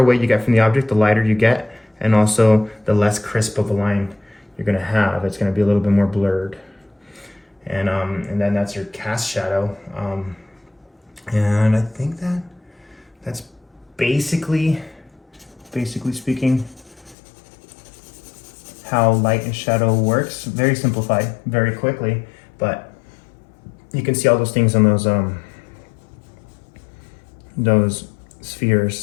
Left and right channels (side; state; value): right; drops out; at 17.2 s